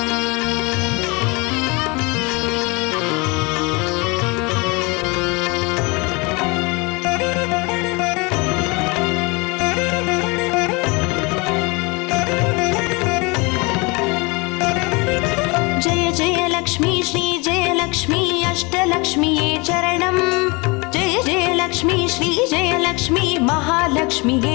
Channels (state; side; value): quieter; right; 27.6 dB